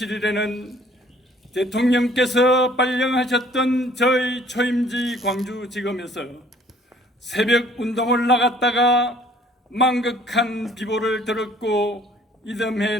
대통령께서 발령하셨던 저희 초임지 광주지검에서 새벽 운동을 나갔다가 망극한 비보를 들었고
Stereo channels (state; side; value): normal; both; correlation 0.57